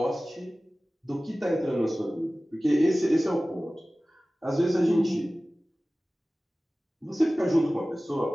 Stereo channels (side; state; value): both; normal; correlation 0.97